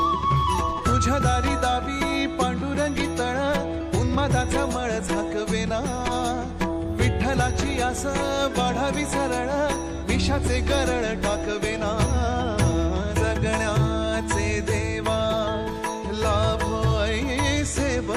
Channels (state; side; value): identical; both; correlation 1.00